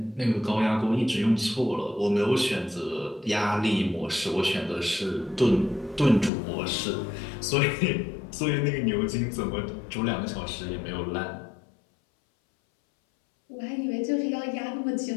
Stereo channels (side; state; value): right; drops out; at 6.3 s